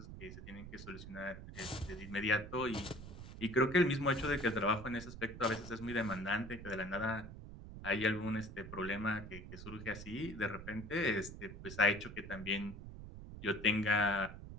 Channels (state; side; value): noise; right; rumble, 12 dB below the sound